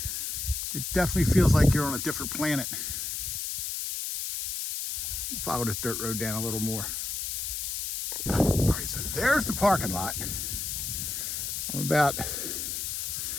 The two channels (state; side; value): noise; left; hiss, 3 dB below the sound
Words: It definitely feels like you're on a different planet. Follow this dirt road down a little more. All right, so there's the parking lot. I'm about